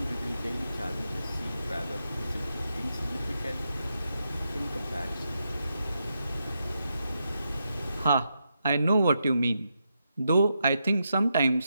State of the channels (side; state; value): both; inverted; correlation -0.84